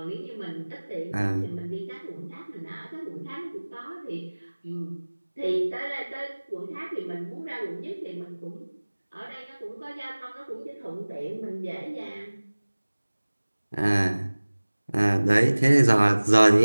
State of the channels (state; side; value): inverted; both; correlation -1.00